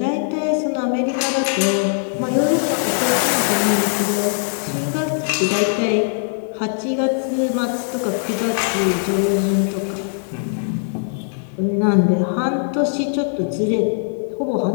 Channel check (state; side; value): silent; right; digital silence